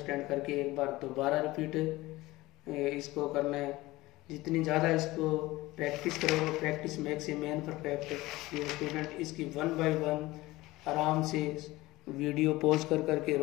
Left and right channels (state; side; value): quieter; right; 19.1 dB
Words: करके एक बार दोबारा रिपीट इसको करना है। जितनी ज़्यादा इसको प्रैक्टिस करोगे, practice makes a man perfect. ये स्टूडेंट इसकी 1 by 1 आराम से वीडियो पॉज करके